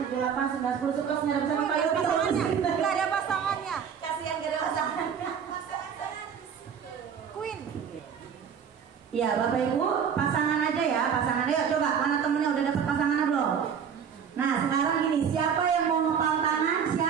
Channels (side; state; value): left; quieter; 7.4 dB